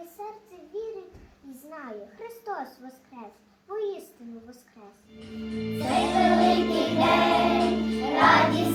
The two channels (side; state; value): both; identical; correlation 1.00